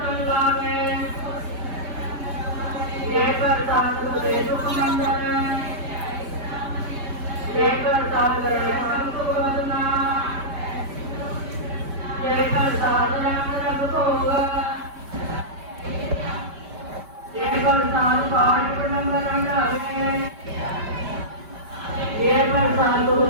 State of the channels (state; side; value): late; left; 5.1 ms